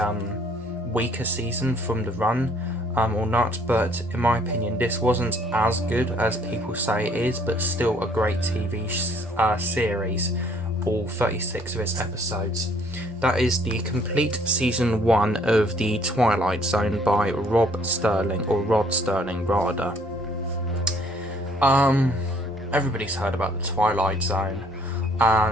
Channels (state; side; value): normal; both; correlation 0.61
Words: weaker season from the run or not, but in my opinion, this wasn't as good as people say it is, but still a great TV series, all 36 of its episodes. That is the complete season 1 of The Twilight Zone by Rod Sterling rather. Everybody's heard about The Twilight Zone,